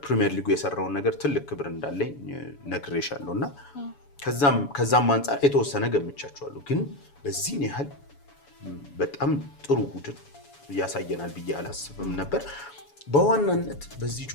ሊጉ የሰራውን ነገር ትልቅ ክብር እንዳለኝ ነግሬሻለሁ እና ከዛም አንጻር የተወሰነ ገምቻቸዋለሁ። ግን በዚህን ያህል በጣም ጥሩ ቡድን ያሳየናል ብዬ አላስብም ነበር። በዋናነት በዚህ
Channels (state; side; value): late; right; 7.1 ms